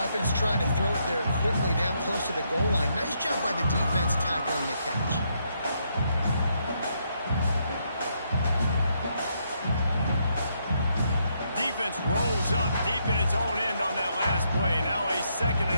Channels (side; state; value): both; inverted; correlation -0.76